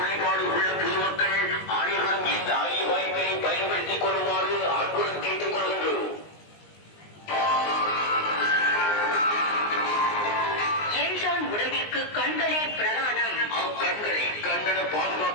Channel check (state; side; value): late; right; 19 ms